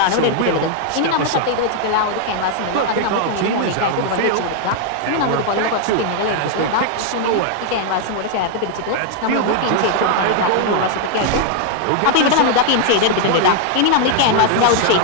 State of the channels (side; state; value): both; different; correlation 0.00